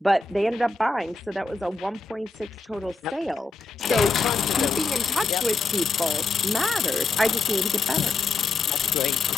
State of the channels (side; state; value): right; quieter; 3.8 dB